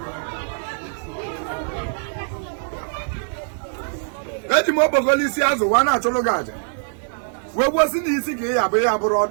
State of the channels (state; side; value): silent; left; digital silence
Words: eji m okpokolo isi azụ wa na-achụrụ gị aja wee gbuosi na isi ka ihe abụ ihe abụrụ